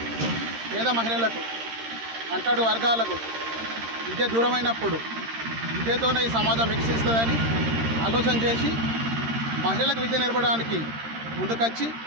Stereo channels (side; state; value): left; late; 13 ms